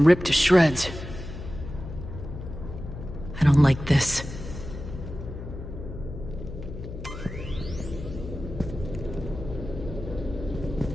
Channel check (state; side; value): noise; left; hum, 9 dB below the sound